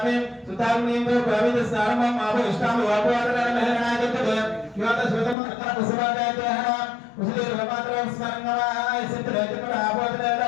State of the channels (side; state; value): right; drops out; at 5.4 s